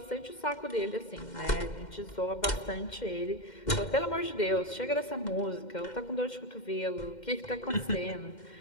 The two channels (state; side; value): late; right; 2.1 ms